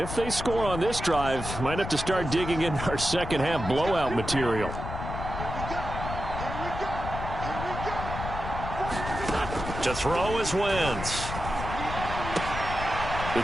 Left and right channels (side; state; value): left; noise; rumble, 6 dB below the sound